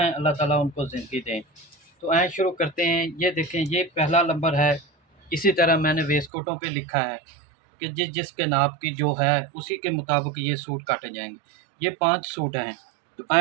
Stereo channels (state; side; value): drops out; left; at 6.3 s